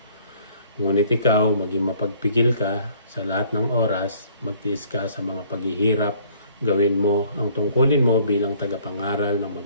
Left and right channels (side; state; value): both; inverted; correlation -0.58